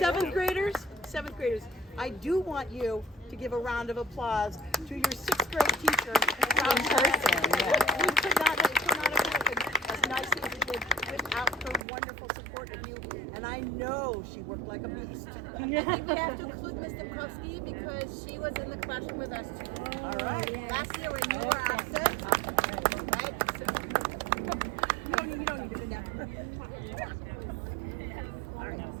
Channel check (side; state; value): left; drops out; at 11.8 s